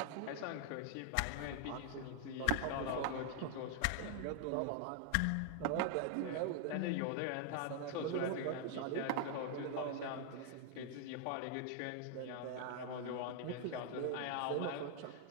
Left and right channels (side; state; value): both; different; correlation 0.00